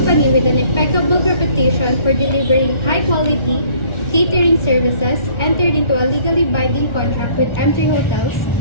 with an impeccable reputation for delivering high-quality catering services, entered into a legally binding contract with M3 Hotels,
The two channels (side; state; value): right; late; 1.4 ms